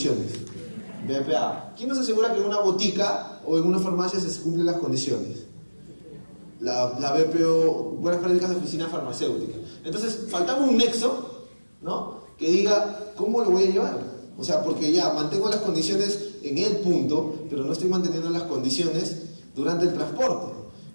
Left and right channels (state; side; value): inverted; both; correlation -1.00